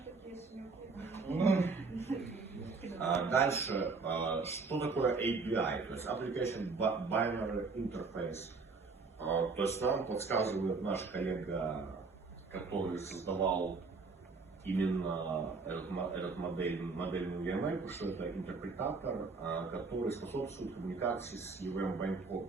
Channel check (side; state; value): left; quieter; 4.3 dB